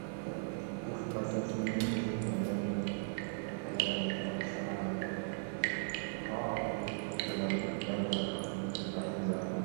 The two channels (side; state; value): left; silent; digital silence